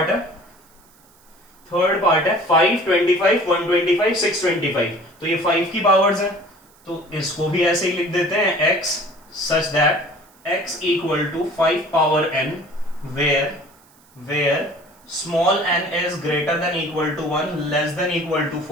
है 5 25 125 625। तो ये 5 की पावर्स है, तो इसको भी ऐसे ही लिख देते हैं, x such that x equal to 5 power n where small n is greater than equal to 1, less than equal to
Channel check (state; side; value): noise; right; hiss, 30 dB below the sound